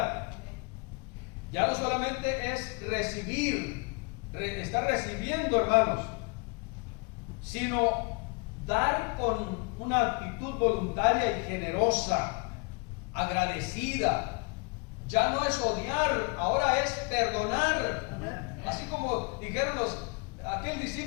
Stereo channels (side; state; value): right; quieter; 33.4 dB